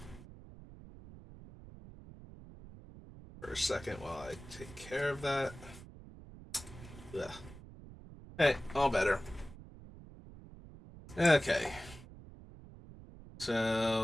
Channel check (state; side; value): noise; right; rumble, 17 dB below the sound